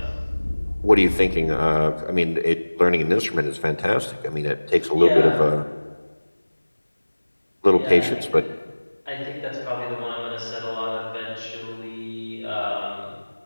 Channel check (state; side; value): inverted; both; correlation -1.00